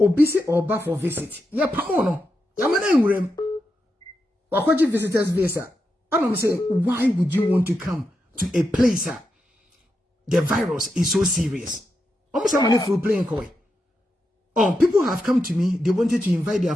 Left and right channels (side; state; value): both; normal; correlation 0.86